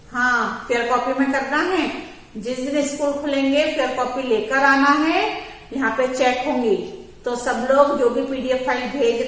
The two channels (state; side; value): identical; both; correlation 1.00